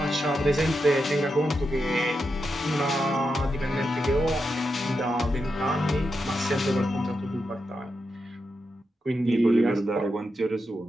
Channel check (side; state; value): both; normal; correlation 0.86